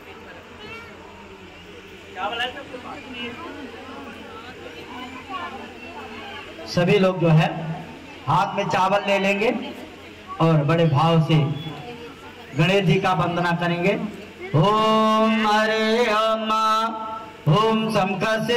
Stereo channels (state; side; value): identical; both; correlation 1.00